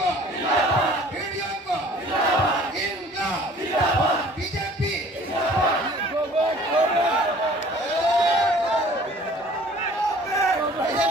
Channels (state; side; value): normal; both; correlation 0.51